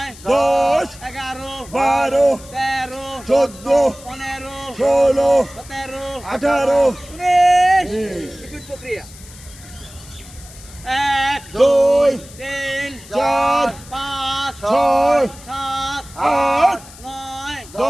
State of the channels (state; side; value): noise; left; hiss, 19 dB below the sound